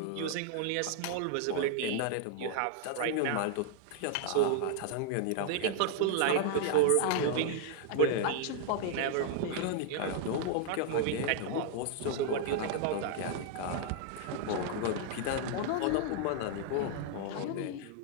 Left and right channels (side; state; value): both; different; correlation 0.00